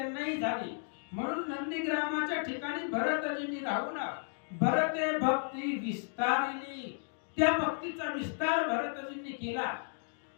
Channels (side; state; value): right; silent; 55 dB below the other